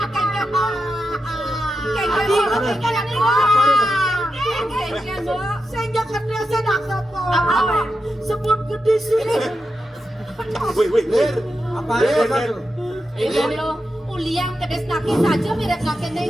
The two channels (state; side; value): normal; both; correlation 0.88